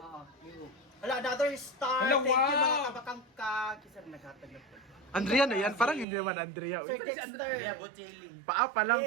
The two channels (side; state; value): left; drops out; at 6.1 s